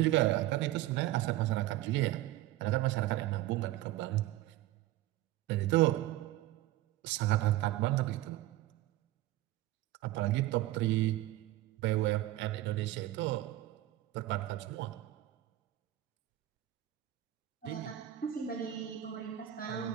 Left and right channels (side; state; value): left; quieter; 15.4 dB